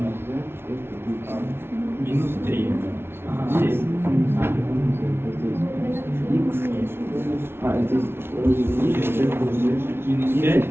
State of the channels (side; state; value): left; late; 0.12 ms